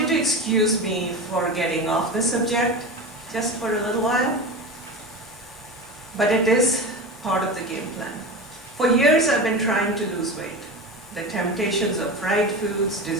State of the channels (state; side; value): normal; both; correlation 0.26